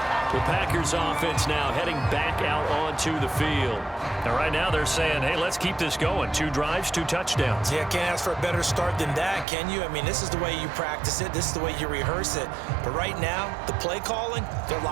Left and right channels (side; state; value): left; drops out; at 9.5 s